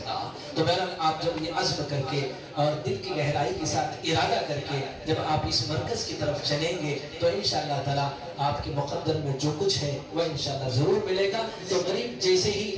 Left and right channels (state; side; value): identical; both; correlation 1.00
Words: تو بہرحال آپ جب یہ عزم کر کے اور دل کی گہرائی کے ساتھ ارادہ کر کے جب آپ اس مرکز کی طرف چلیں گے تو انشاءاللہ تعالی آپ کے مقدر میں جو کچھ ہے وہ انشاءاللہ ضرور ملے گا۔ تو غریب جیسے ہی